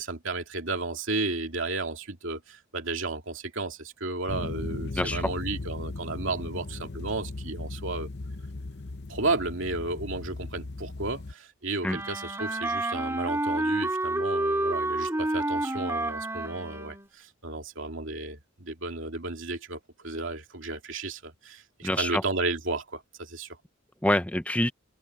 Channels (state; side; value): normal; both; correlation 0.33